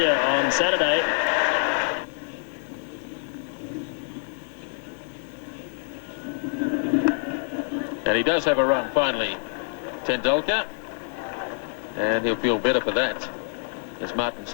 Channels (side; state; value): right; silent; 61 dB below the other